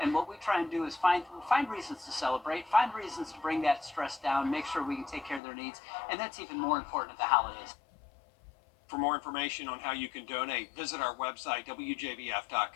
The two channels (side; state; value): right; drops out; at 5.4 s